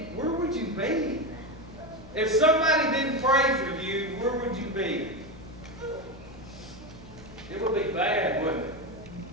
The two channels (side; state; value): both; normal; correlation 0.15